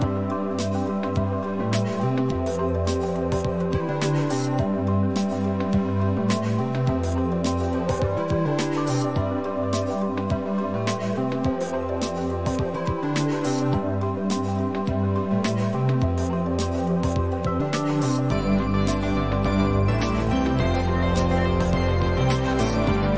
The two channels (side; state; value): both; identical; correlation 1.00